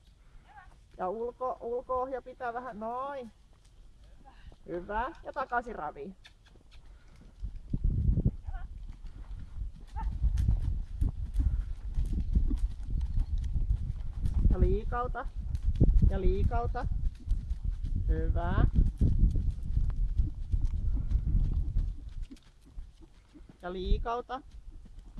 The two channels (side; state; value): both; identical; correlation 1.00